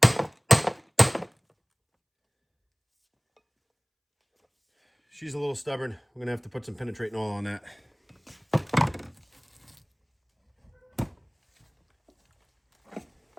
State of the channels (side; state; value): both; identical; correlation 1.00